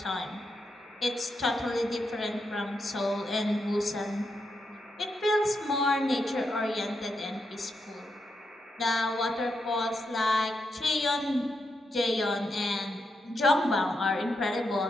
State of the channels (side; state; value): both; normal; correlation 0.83